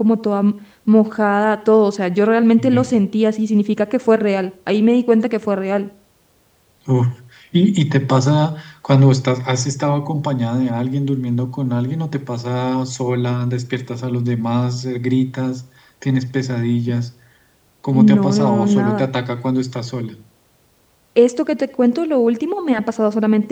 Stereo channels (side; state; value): both; identical; correlation 1.00